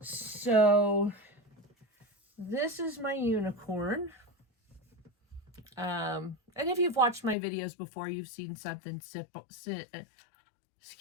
So this is my unicorn. And if you've watched my videos before, you've seen something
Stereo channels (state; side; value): drops out; right; at 7.4 s